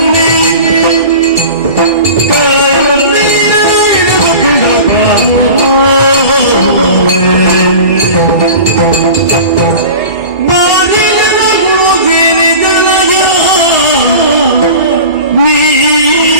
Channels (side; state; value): right; late; 1.8 ms